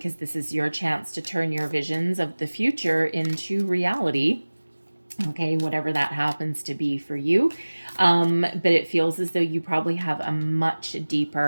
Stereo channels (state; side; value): inverted; both; correlation -1.00